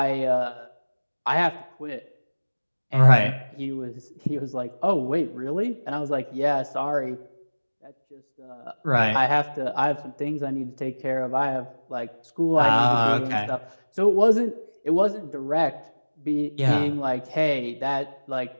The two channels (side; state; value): both; inverted; correlation -1.00